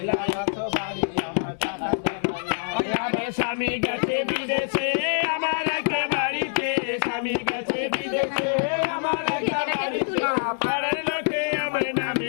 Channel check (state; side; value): silent; right; 62 dB below the other